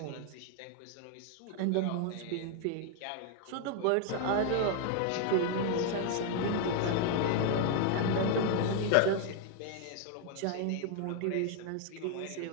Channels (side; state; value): both; different; correlation 0.00